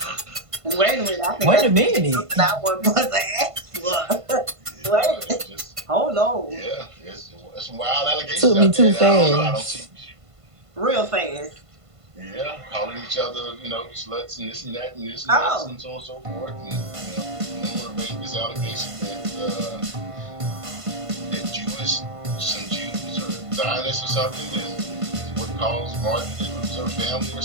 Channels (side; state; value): left; late; 1.5 ms